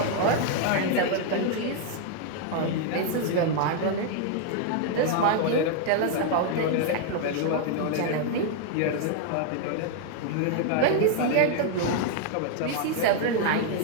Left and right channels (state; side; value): different; both; correlation 0.00